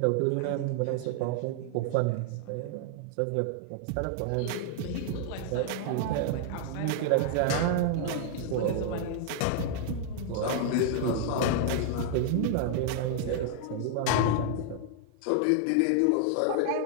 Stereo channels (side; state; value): both; different; correlation 0.00